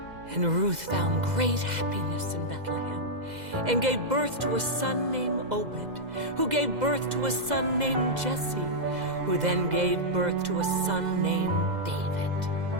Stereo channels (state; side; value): late; left; 2.0 ms